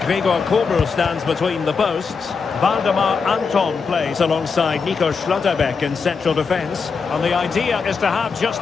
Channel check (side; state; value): right; quieter; 5.3 dB